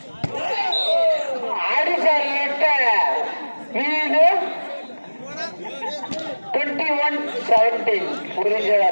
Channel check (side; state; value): both; inverted; correlation -1.00